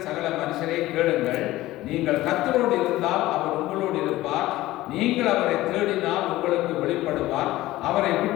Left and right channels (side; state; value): right; quieter; 16.8 dB